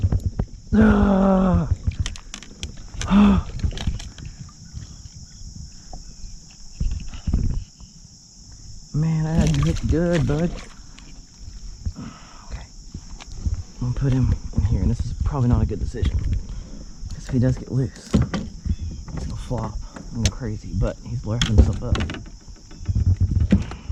Man, I had you hooked good, bud. Okay. I'm gonna put him in here, and this is probably not a good decision. Because if he does get loose, he's gonna flop and go crazy, but he's lifting himself up.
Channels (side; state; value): both; identical; correlation 1.00